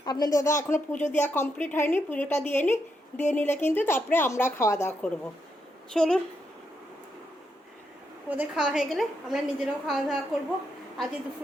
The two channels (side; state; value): both; normal; correlation 0.81